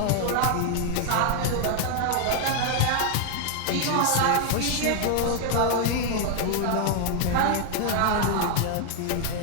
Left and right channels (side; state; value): both; different; correlation 0.00